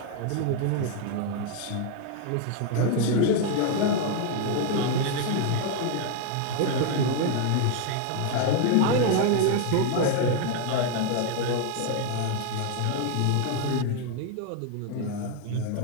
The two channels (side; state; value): both; different; correlation 0.00